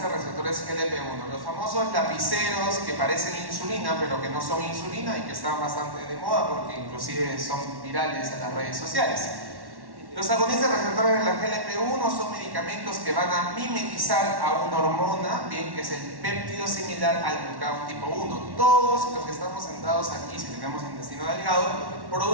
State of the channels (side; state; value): left; late; 1.1 ms